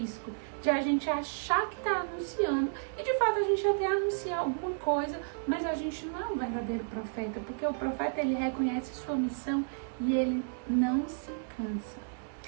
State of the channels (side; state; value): left; silent; digital silence